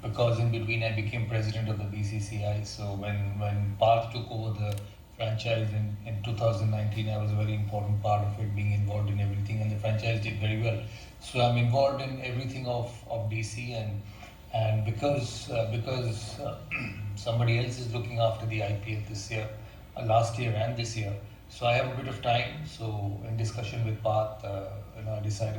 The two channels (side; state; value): both; identical; correlation 1.00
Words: because in between I became president of the BCCI. So when Parth took over the franchise in 2019, I was a very important part of it, being involved in everything, and the franchise did very well. So I'm involved in everything of DC, and because somebody else is looking after the IPL this year, last year and this year, so I have a bit of time. So in discussion with Parth, I